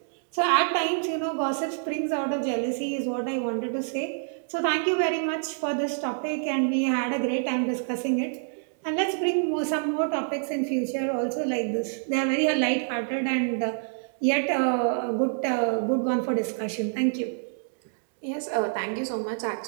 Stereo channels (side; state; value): left; silent; digital silence